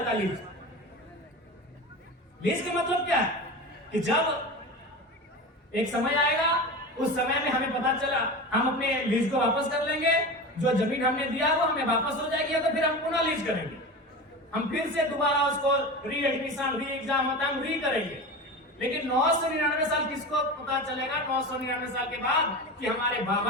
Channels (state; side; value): normal; both; correlation 0.28